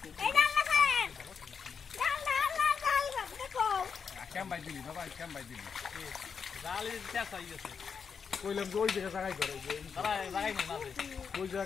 কইলাম যে ওই জায়গায় করে ওই জায়গা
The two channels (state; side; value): quieter; right; 6.2 dB